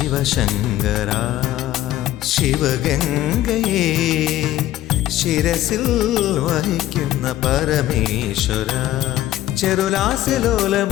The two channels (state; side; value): quieter; right; 13.9 dB